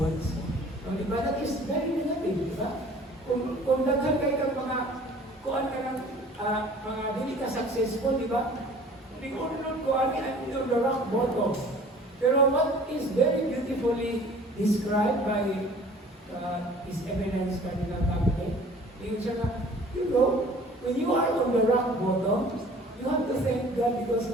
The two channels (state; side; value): normal; both; correlation 0.49